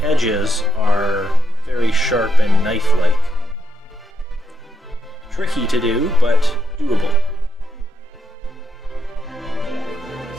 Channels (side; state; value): both; normal; correlation 0.82